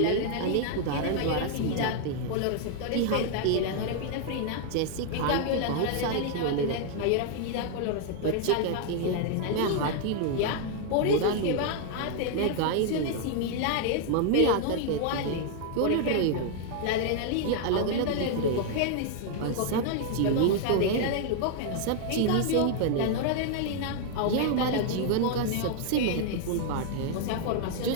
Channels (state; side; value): different; both; correlation 0.00